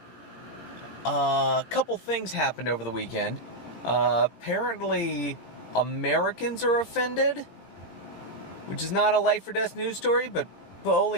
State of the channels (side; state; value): right; late; 17 ms